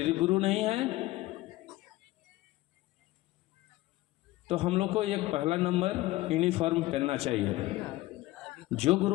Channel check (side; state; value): right; quieter; 18.0 dB